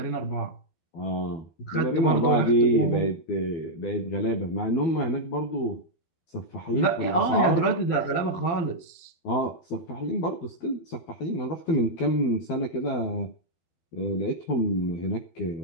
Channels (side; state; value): right; late; 12 ms